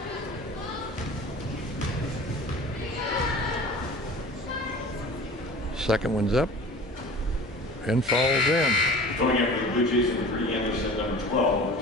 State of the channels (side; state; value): both; normal; correlation 0.41